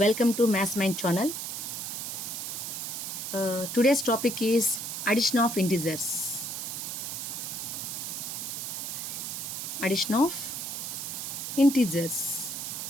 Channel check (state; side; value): noise; right; hiss, 5 dB below the sound